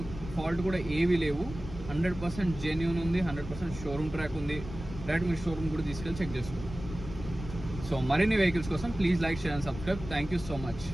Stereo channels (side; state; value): left; noise; rumble, 11 dB below the sound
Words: ఫాల్ట్ కూడా ఏవి లేవు. 100% జెన్యూన్ ఉంది, 100% షోరూమ్ ట్రాక్ ఉంది. డైరెక్ట్ మీరు షోరూమ్ కూడా తీసుకెళ్ళి చెక్ చేసుకోండి. సో మరిన్ని వెహికల్స్ కోసం please like, share and subscribe. Thank you so much.